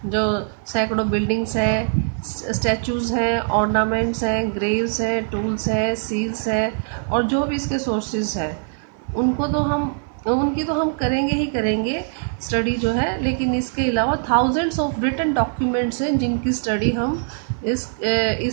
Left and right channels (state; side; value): silent; left; 59 dB below the other